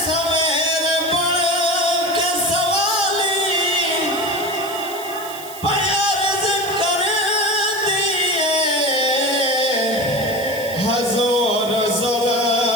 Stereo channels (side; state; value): right; noise; hiss, 14 dB below the sound